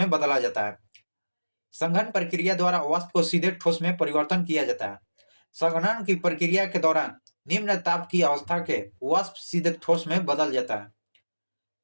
बदला जाता है। संघन प्रक्रिया द्वारा वाष्प को सीधे ठोस में परिवर्तन किया जाता है। संघनन की प्रक्रिया के दौरान निम्न ताप की अवस्था के वाष्प सीधे ठोस में बदल जाता है।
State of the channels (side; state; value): both; inverted; correlation -1.00